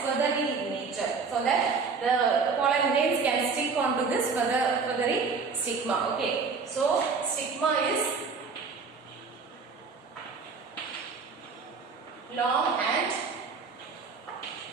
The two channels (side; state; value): left; quieter; 5.1 dB